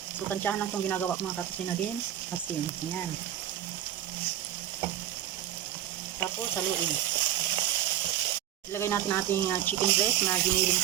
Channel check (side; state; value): left; quieter; 11.9 dB